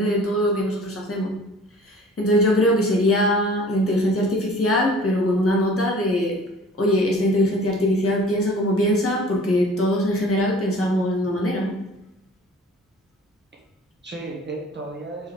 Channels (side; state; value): both; normal; correlation 0.48